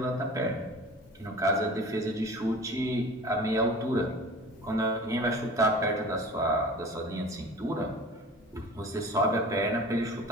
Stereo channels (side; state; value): both; normal; correlation 0.40